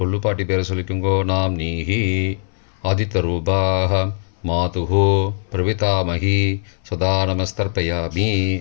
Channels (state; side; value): silent; right; 62 dB below the other